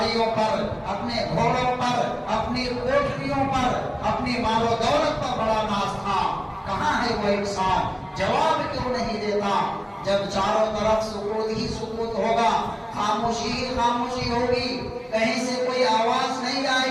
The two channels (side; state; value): both; identical; correlation 1.00